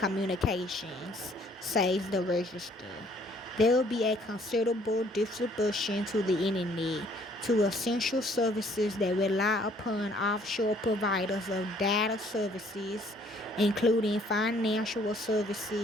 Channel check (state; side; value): normal; both; correlation 0.61